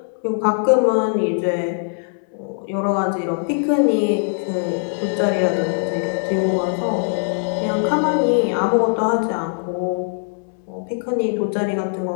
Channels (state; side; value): silent; right; digital silence